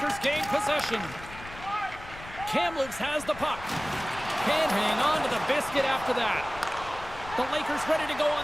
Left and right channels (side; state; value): left; noise; rumble, 15 dB below the sound